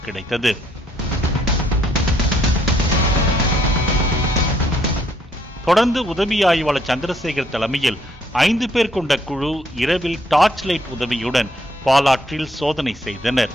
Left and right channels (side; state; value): both; normal; correlation 0.68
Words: கிடைத்தது. தொடர்ந்து உதவி ஆய்வாளர் சந்திரசேகர் தலைமையில் 5 பேர் கொண்ட குழு இரவில் டார்ச் லைட் உதவியுடன் பாலாற்றில் சோதனை செய்தனர்.